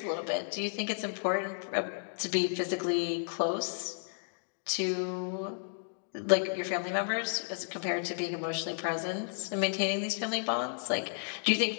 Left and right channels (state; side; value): silent; right; digital silence